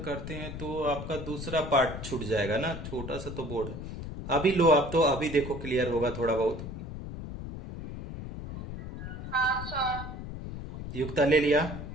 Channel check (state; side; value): noise; left; rumble, 8 dB below the sound